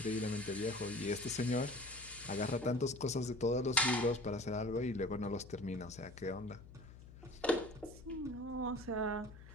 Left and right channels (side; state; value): left; noise; hum, 17 dB below the sound